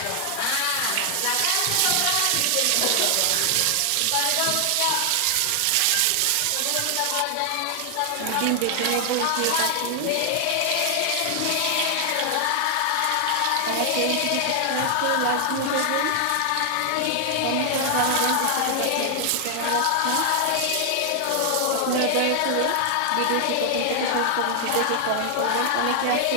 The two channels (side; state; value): both; different; correlation 0.00